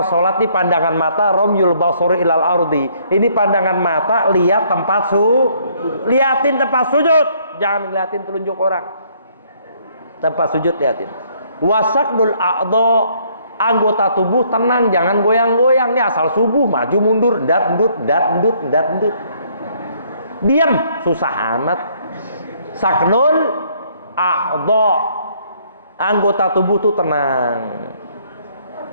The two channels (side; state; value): both; inverted; correlation -0.65